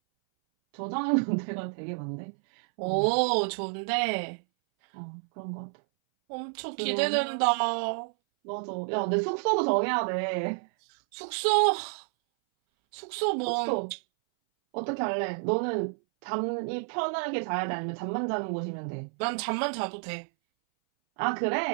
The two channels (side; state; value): left; silent; 58 dB below the other